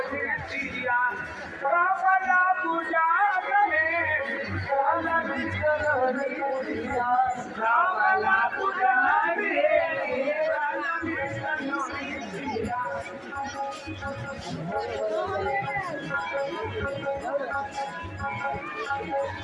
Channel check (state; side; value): identical; both; correlation 1.00